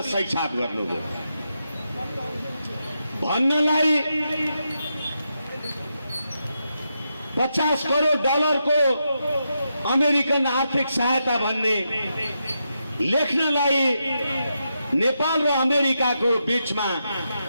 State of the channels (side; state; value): both; inverted; correlation -0.85